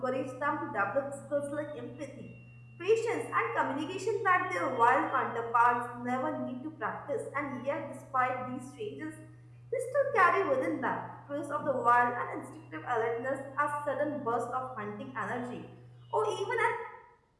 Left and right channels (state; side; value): identical; both; correlation 1.00